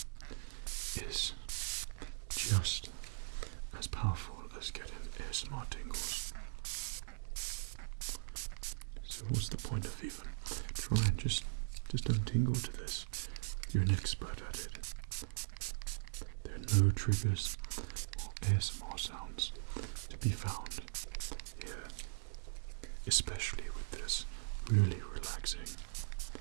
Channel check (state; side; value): silent; left; 51 dB below the other